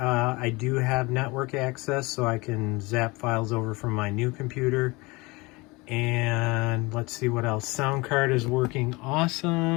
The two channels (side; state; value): right; quieter; 24.4 dB